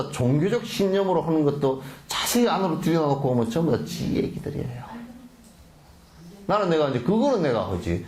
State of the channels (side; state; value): both; identical; correlation 1.00